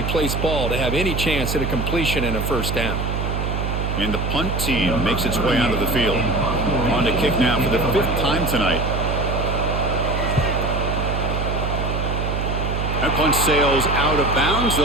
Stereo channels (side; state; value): right; noise; hum, 1 dB below the sound